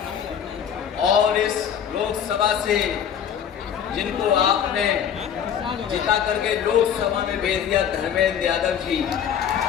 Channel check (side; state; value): right; quieter; 8.6 dB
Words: और इस लोकसभा से जिनको आपने जिता करके लोकसभा में भेज दिया, धर्मेंद्र यादव जी,